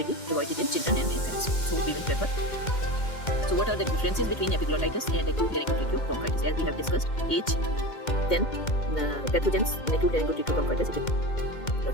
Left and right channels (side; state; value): right; late; 2.1 ms